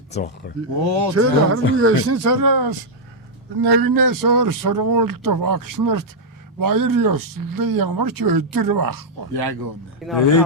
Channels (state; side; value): normal; both; correlation -0.05